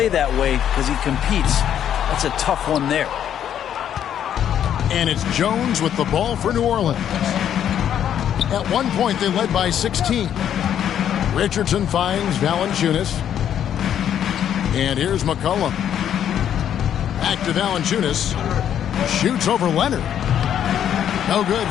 that way because he competes. That's a tough one there. And it's Jones with the ball for New Orleans. At one point, they led by 16. Richardson finds Valanciunas. And here's McCollum. Back to Valanciunas. Shoots over Leonard. No good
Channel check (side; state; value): right; quieter; 9.8 dB